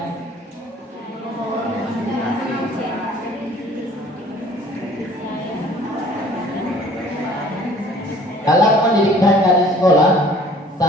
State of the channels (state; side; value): normal; both; correlation 0.53